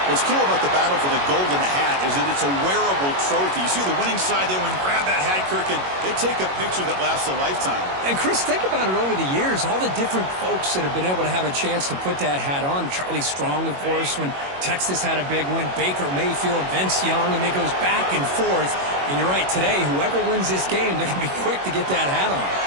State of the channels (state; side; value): late; left; 21 ms